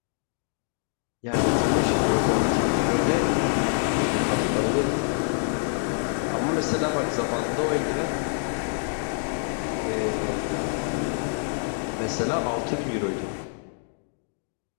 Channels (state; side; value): silent; right; 61 dB below the other